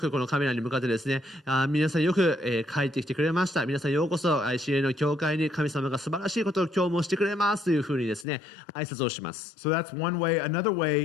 このカメラに向かってですね、皆さんよく、帰ってきてくれました。皆さんようこそ ICA の教会に神様が素晴らしいことを今日もしてくれますというふうにですね、挨拶をします。So that's one way. Another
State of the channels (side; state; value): right; drops out; at 8.2 s